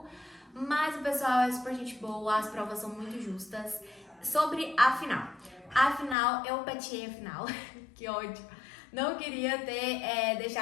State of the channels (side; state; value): right; drops out; at 6.2 s